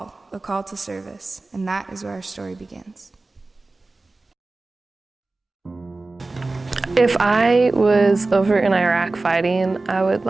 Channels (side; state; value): left; quieter; 3.3 dB